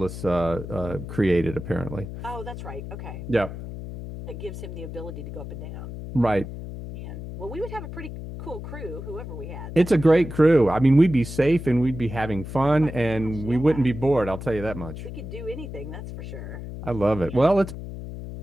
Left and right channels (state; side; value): noise; left; hum, 9 dB below the sound